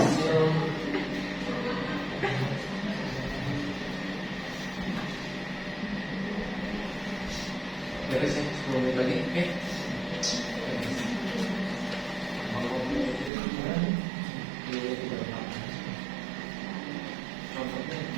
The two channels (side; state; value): left; drops out; at 13.3 s